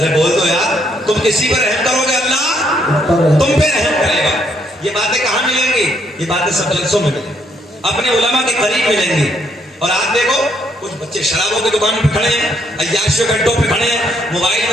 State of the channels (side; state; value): both; normal; correlation 0.72